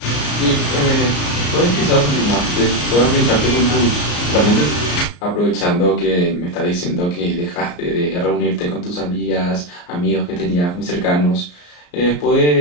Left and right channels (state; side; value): late; right; 34 ms